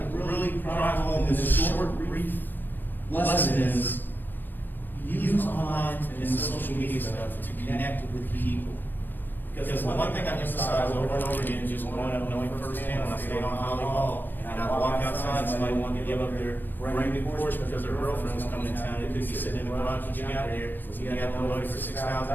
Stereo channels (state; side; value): late; right; 0.093 ms